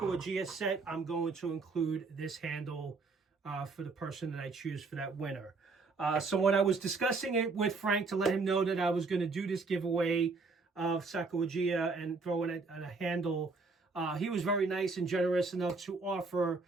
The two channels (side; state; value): left; quieter; 4.1 dB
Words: set, I'm going to include this handle for the person that I choose for that winner. So when I was discussing it with Frank to let him know that I was going to do this giveaway of Sacagawea and throw in a handle, he was very nice and generous enough to offer